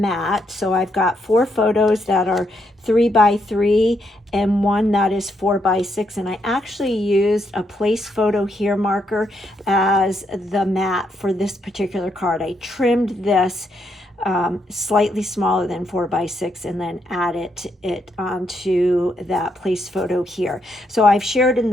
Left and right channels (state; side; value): normal; both; correlation 0.77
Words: So I've got 4 photos that are 3 by 3 and 1 that is 4 by 6, and I actually used a place photo here marker as the mat for this particular card. I trimmed this slightly smaller than 4 by 6 and then added it onto that place photo here. So I've shared in